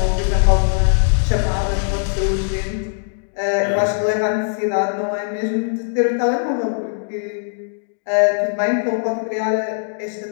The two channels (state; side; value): silent; right; digital silence